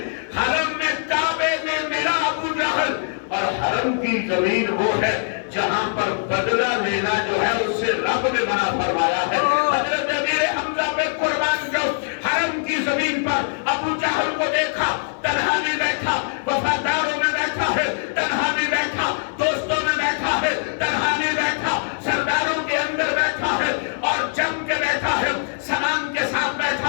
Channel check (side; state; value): right; silent; digital silence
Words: کعبے میں ملا ابو جہل. اور حرم کی زمین وہ ہے جہاں پر بدلہ لینا جو ہے اس سے رب نے منع فرمایا ہے. حضرت امیر حمزہ پہ قربان جو حرم کی زمین پر ابو جہل کو دیکھا, تنہا بھی بیٹھا, وفاداروں میں بیٹھا ہے, تنہا بھی بیٹھا, دوستوں میں بیٹھا ہے, تنہا بھی بیٹھا, سرداروں کے اندر بیٹھا ہے اور جم کے بیٹھا ہے, سامان کے ساتھ